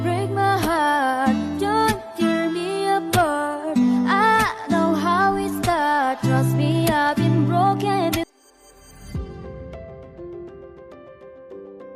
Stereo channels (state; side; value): identical; both; correlation 1.00